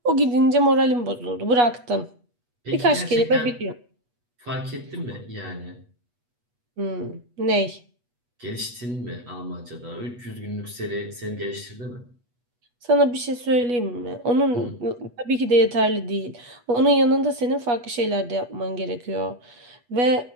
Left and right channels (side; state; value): left; late; 8.2 ms